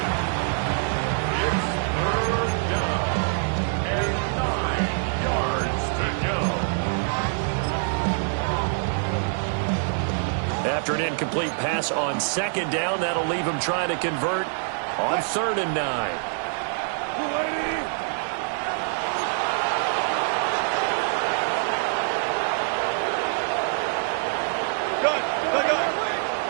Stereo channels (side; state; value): left; silent; 62 dB below the other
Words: After an incomplete pass on second down, that'll leave him trying to convert on 3rd and 9.